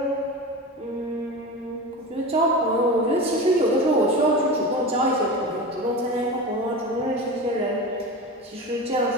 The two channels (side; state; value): both; normal; correlation 0.27